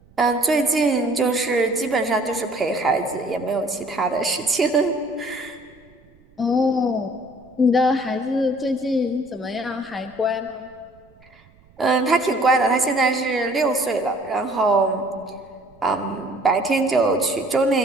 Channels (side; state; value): right; noise; rumble, 29 dB below the sound